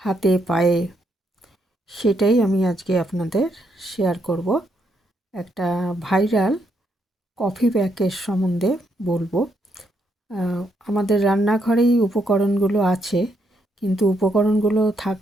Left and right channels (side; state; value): both; normal; correlation 0.76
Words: হাতে, পায়ে, সেটাই আমি আজকে আপনাদের শেয়ার করব। একটা ভাইরাল কফি প্যাকের সম্বন্ধে বলবো। আমাদের রান্নাঘরেই উপকরণগুলো আছে, কিন্তু উপকরণগুলো